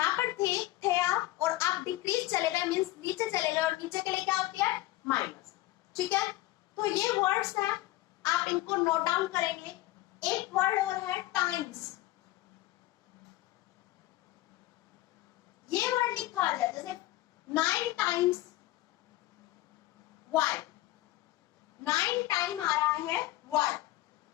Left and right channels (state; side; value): quieter; right; 16.9 dB